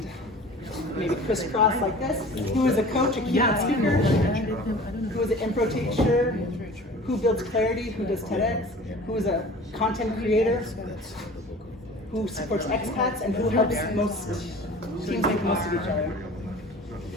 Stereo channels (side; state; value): both; normal; correlation 0.42